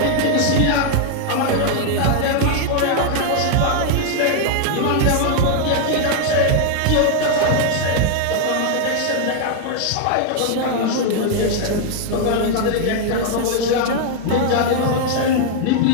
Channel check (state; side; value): different; both; correlation 0.00